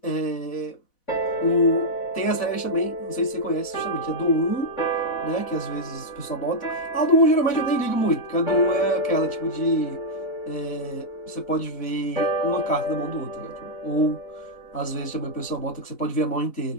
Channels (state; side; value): late; right; 4.0 ms